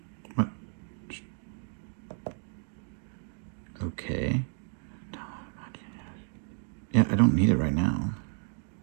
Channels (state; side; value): silent; left; 57 dB below the other